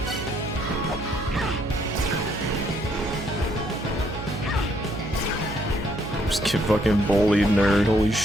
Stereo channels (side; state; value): right; noise; hum, 9 dB below the sound